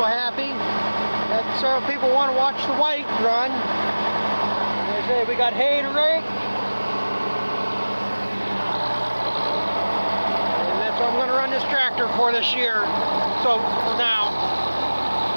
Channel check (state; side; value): inverted; both; correlation -1.00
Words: happy. That several people want to watch the white run. They say we got hay to rake. And that's what I'm going to run this tractor for this year. So, for now.